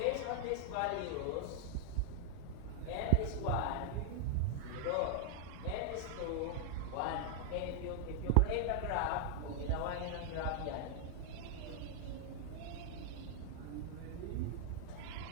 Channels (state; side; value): different; both; correlation -0.01